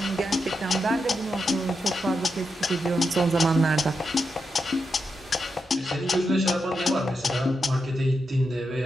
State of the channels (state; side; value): normal; both; correlation 0.86